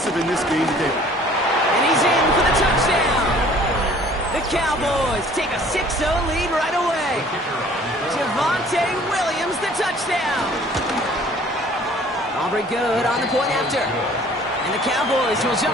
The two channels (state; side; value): normal; both; correlation 0.53